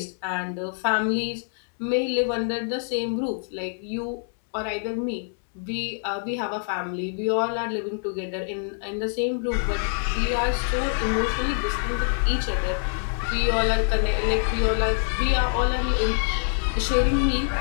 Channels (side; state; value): right; silent; digital silence